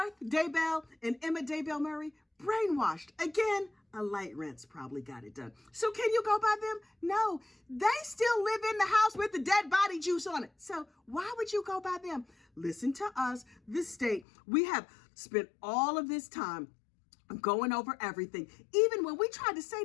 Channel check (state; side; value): drops out; right; at 14.2 s